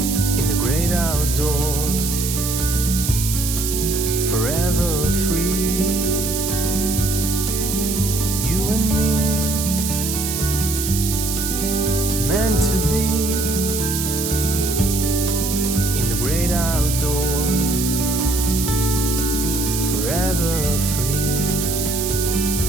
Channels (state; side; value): noise; right; hiss, 3 dB below the sound